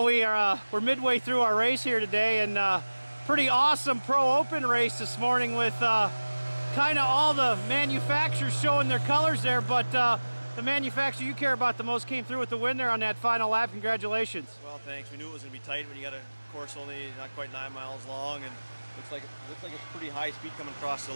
we're midway through our race here today, and pretty awesome Pro Open race this morning with kind of all the manufacturers showing their colors there, but the manufacturer you care about the most came through with the win there on that final lap. Congratulations. Well, thanks. We knew it was going to be tight when you got a course only not quite 9 miles long, and looks like it's pretty high speed coming across the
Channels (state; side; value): inverted; both; correlation -1.00